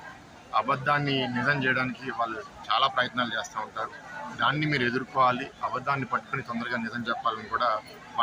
అబద్ధాన్ని నిజం చేయడానికి వాళ్ళు చాలా ప్రయత్నాలు చేస్తూ ఉంటారు. దాన్ని మీరు ఎదుర్కోవాలి, అబద్ధాన్ని పట్టుకుని తొందరగా నిజం చెప్పాలని కూడా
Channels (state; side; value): identical; both; correlation 1.00